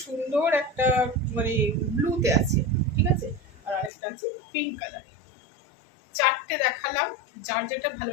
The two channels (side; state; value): right; drops out; at 3.9 s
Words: সুন্দর একটা মানে ব্লুতে আছে। ঠিক আছে, আর আরেকটা আছে পিঙ্ক কালারে। 4টে দেখালাম, যার যেটা